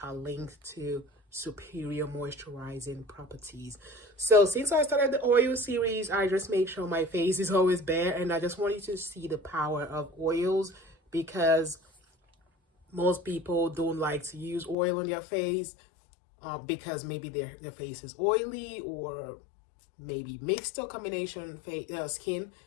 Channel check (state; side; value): drops out; right; at 14.8 s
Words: are linked to superior moisturizing properties. So since I started the oil series, I just make sure my face is always bare, and I just want you to see the power of oils, because most people don't like to use oil on their face because maybe their face is oily or maybe mixed or combination skin.